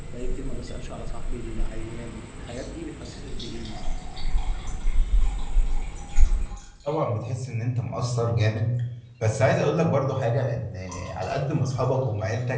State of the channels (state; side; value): identical; both; correlation 1.00